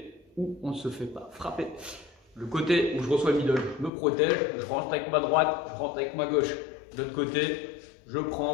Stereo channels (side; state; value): right; drops out; at 3.9 s